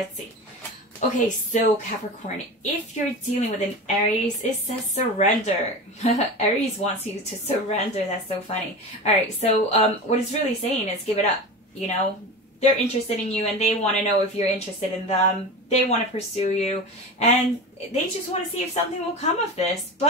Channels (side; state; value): both; normal; correlation 0.27